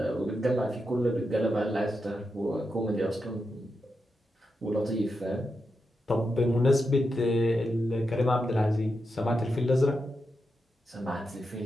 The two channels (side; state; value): both; normal; correlation 0.87